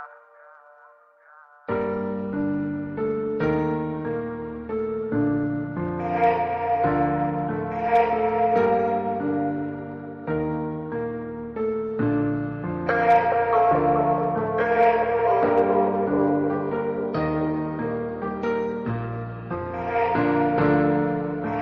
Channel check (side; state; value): both; identical; correlation 1.00